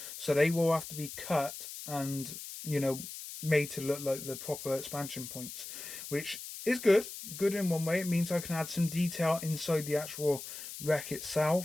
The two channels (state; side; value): noise; left; hiss, 10 dB below the sound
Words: So they will have to be cut and, you know, made to look like the proper expansion points, which is good. Good in one way. It means I can add some detail inside the actual wreck